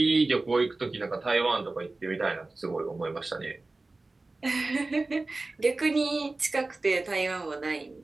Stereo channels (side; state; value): left; quieter; 3.3 dB